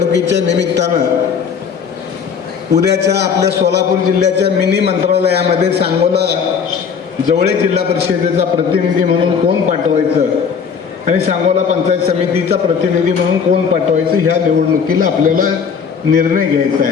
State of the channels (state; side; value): quieter; right; 6.5 dB